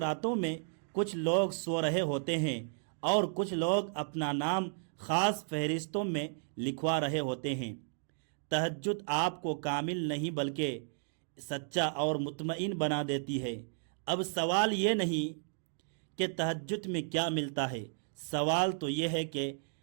میں کچھ لوگ سو رہے ہوتے ہیں اور کچھ لوگ اپنا نام خاص فہرستوں میں لکھوا رہے ہوتے ہیں۔ تہجد آپ کو کامل نہیں بلکہ سچا اور مطمئن بنا دیتی ہے۔ اب سوال یہ نہیں کہ تہجد میں کیا ملتا ہے، سوال تو یہ ہے کہ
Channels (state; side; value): silent; left; digital silence